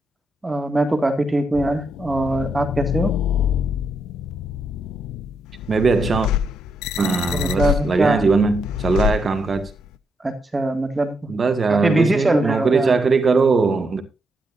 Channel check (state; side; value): normal; both; correlation 0.79